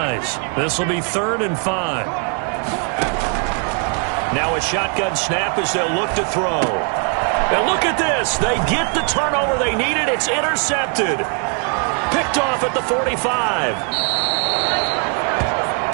This will be 3rd and 5. Now a shotgun snap as they'll look to throw. And look at this. They get the turnover they needed. It's intercepted. Picked off at the 45.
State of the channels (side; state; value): left; quieter; 37.3 dB